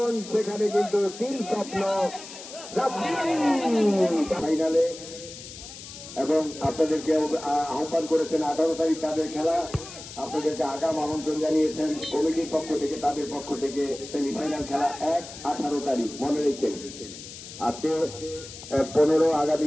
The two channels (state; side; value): noise; left; hiss, 13 dB below the sound